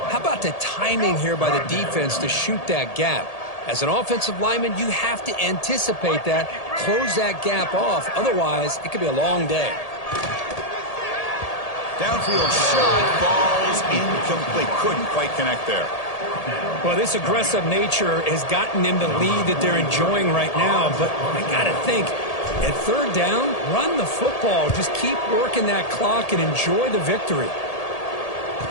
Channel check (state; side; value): late; right; 1.8 ms